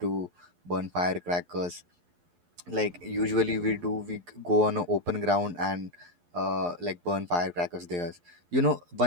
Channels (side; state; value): left; late; 11 ms